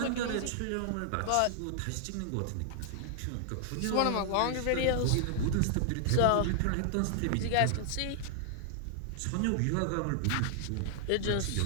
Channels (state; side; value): different; both; correlation 0.00